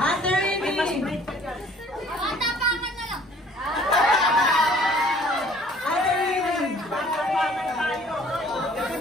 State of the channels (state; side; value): normal; both; correlation 0.55